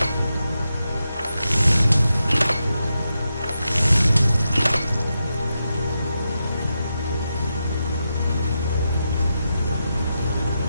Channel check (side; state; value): both; inverted; correlation -0.87